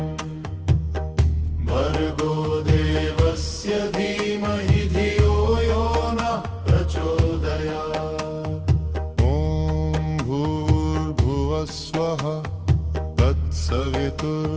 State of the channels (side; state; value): both; identical; correlation 1.00